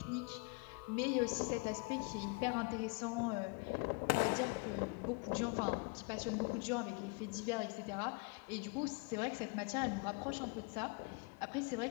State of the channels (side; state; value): right; quieter; 28.6 dB